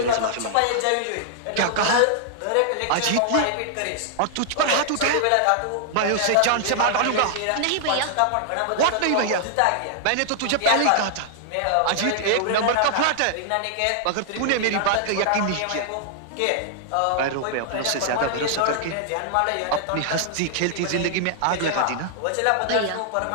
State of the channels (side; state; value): both; different; correlation -0.01